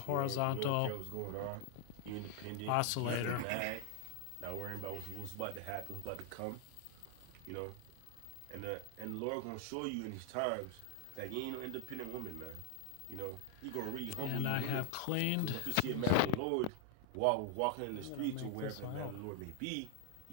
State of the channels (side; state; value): both; different; correlation 0.00